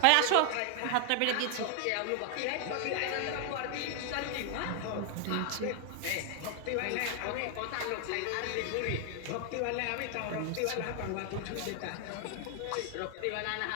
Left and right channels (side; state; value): both; different; correlation 0.00